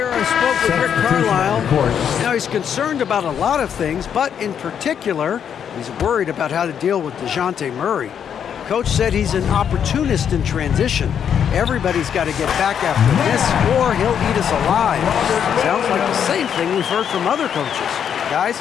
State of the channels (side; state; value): right; quieter; 8.3 dB